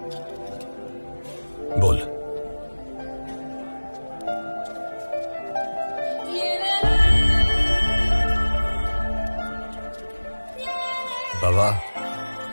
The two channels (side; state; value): both; inverted; correlation -1.00